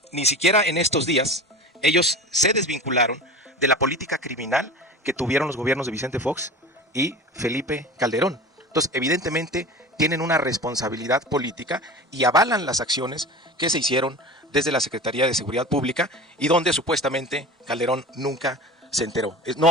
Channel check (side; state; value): both; normal; correlation 0.34